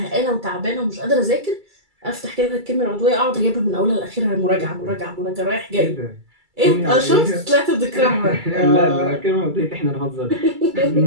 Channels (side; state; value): left; late; 2.3 ms